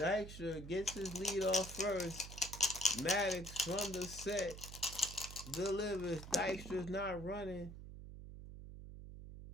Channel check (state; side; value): noise; right; hum, 12 dB below the sound